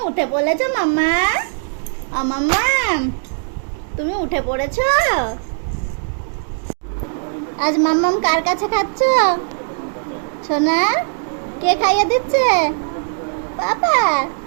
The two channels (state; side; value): silent; left; digital silence